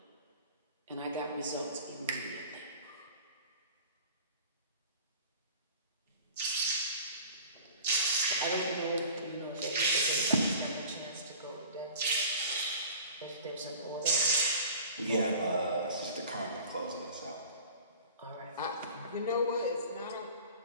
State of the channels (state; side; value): inverted; both; correlation -0.42